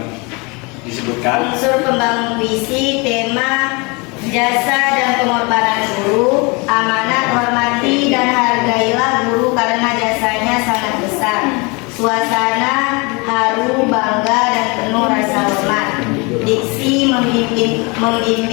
disebutkan. Unsur pembangun puisi, tema, jasa dan pengorbanan guru, amanat, hormati dan hargailah guru karena jasanya sangat besar. Suasana haru, bangga dan penuh rasa hormat. Diksi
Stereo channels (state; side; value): quieter; right; 28.6 dB